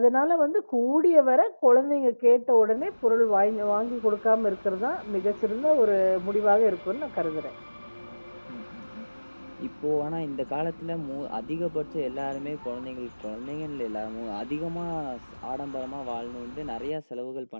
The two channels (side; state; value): both; inverted; correlation -1.00